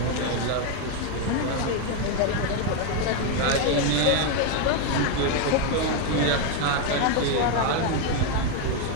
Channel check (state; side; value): different; both; correlation 0.01